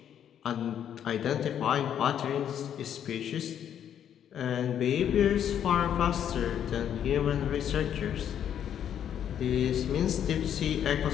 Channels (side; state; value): right; quieter; 9.5 dB